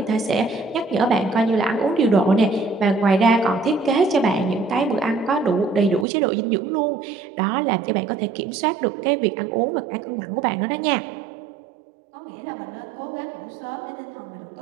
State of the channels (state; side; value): drops out; left; at 6.1 s